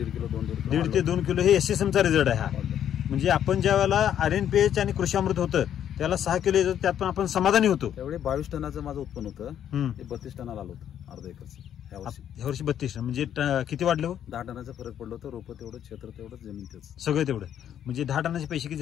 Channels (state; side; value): quieter; right; 9.9 dB